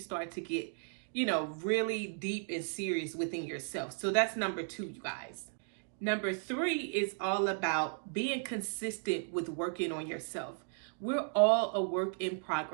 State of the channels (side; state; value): left; silent; 54 dB below the other